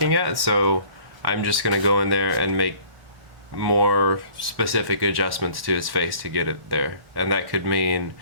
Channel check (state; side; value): late; left; 1.1 ms